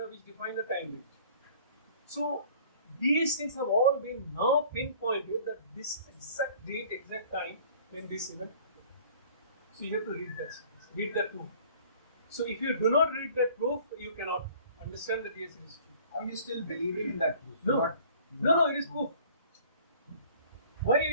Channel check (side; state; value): both; inverted; correlation -0.51